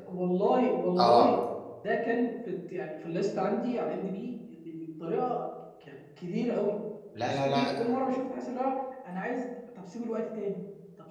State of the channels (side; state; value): both; identical; correlation 1.00